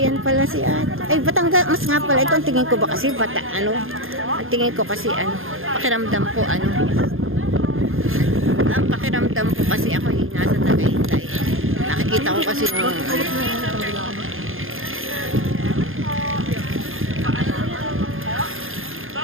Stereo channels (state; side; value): late; left; 0.60 ms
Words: pala si ate. Ay, Batangas nga pala. Ito ang tingin ko ba kasi ang tingin ko kasi pakiramdam ko ang pakiramdam ko kasi ako nasa Tagaytay. Nakikita ko kasi nung